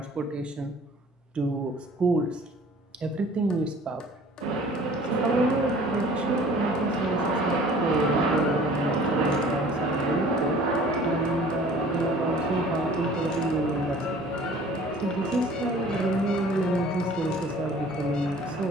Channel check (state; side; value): normal; both; correlation 0.49